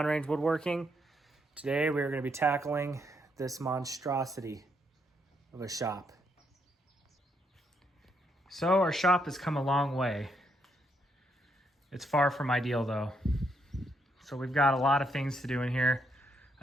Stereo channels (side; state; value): both; normal; correlation 0.76